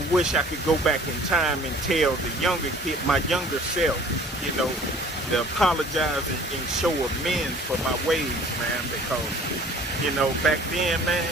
wish I could go back in time and tell the younger kid, my younger self, you know, to apologize and show amends for my ways, man, because, you know, back then,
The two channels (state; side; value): normal; both; correlation 0.50